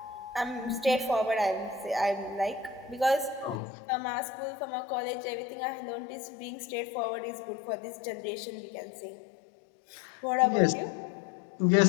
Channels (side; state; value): right; drops out; at 3.6 s